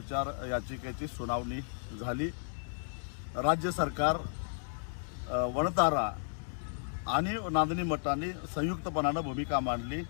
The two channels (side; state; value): right; silent; digital silence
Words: याचिकेची सुनावणी झाली। राज्य सरकार, वणतारा आणि नांदणी मठाने संयुक्तपणाने भूमिका मांडली